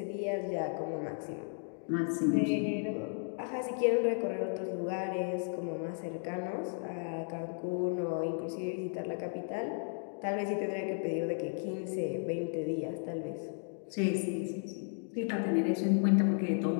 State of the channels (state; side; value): silent; right; 55 dB below the other